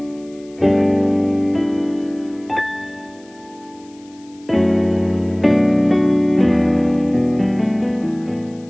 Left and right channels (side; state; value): left; noise; hiss, 28 dB below the sound